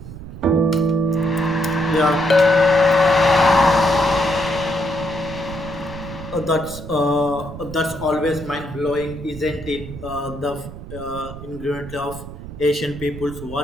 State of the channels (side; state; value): right; noise; rumble, 12 dB below the sound